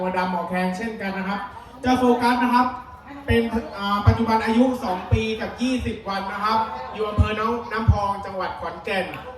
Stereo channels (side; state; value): both; identical; correlation 1.00